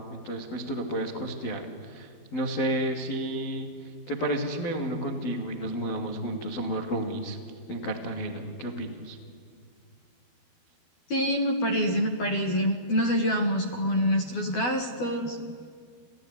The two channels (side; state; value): right; late; 12 ms